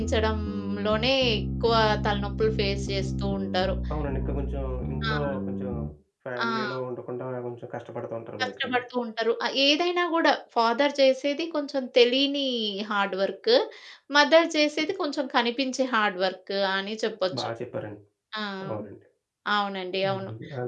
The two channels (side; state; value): both; identical; correlation 1.00